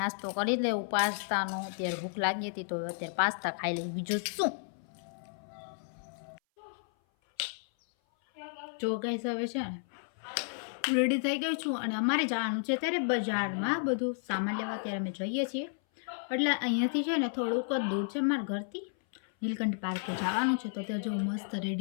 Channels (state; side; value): silent; right; 56 dB below the other